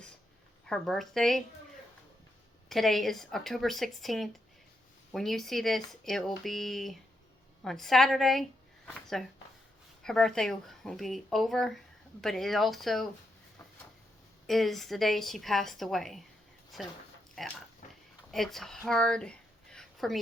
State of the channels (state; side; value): normal; both; correlation 0.82